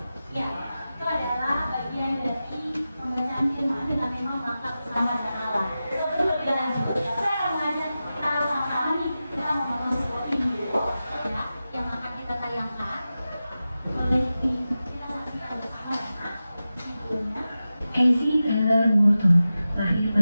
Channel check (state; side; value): inverted; both; correlation -0.94